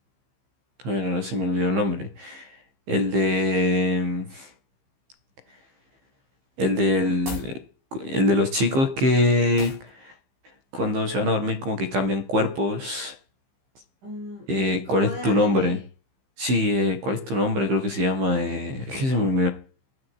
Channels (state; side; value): late; left; 15 ms